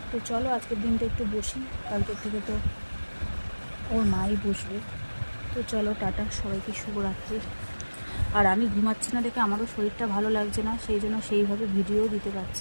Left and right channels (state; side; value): inverted; both; correlation -1.00